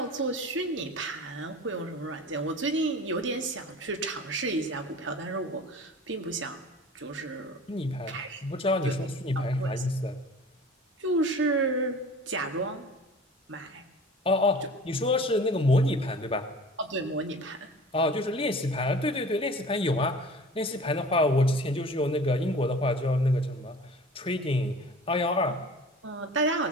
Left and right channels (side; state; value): both; normal; correlation 0.41